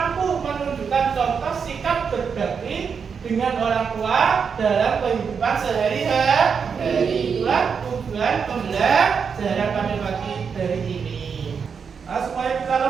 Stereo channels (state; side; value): quieter; left; 6.2 dB